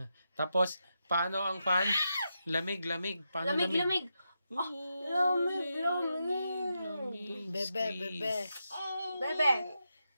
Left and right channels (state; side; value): inverted; both; correlation -0.86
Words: Tapos, paano ang fan? Lamig, lamig. Paano lamig? Lamig. Lamig. Bebe. Bebe.